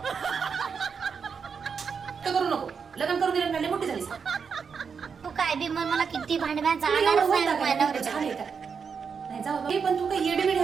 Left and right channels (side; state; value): left; quieter; 6.1 dB